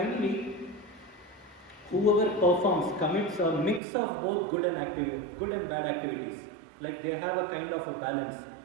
whoever commits a mix of both good and bad activities, like they have a kind of a balance.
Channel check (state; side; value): drops out; left; at 3.8 s